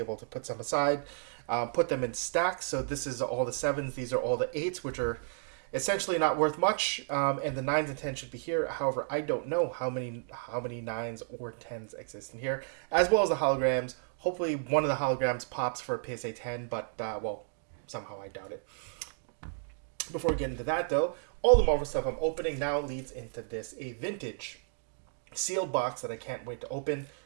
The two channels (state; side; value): silent; left; digital silence